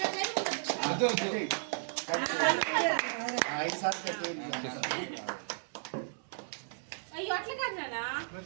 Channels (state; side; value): silent; left; 55 dB below the other